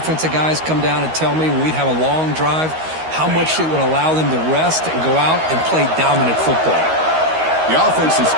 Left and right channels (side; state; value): left; late; 13 ms